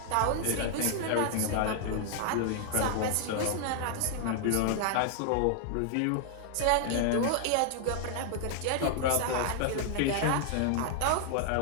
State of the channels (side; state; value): both; different; correlation 0.00